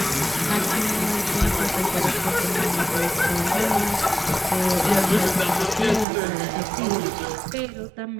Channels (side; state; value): left; drops out; at 6.1 s